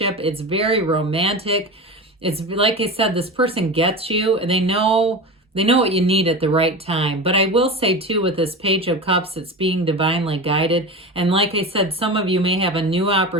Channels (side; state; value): both; normal; correlation 0.28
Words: it's very romantic. It's like I said, this person gets you, and they know what you need at the right time. But I will say, too, with this Page of Cups, it's being divinely guided. And like I said, some of you may have a new